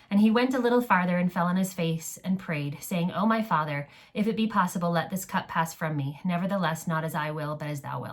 "And he went a little farther and fell on his face and prayed, saying, O my Father, if it be possible, let this cup pass from me. Nevertheless, not as I will, but as thou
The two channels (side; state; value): both; identical; correlation 1.00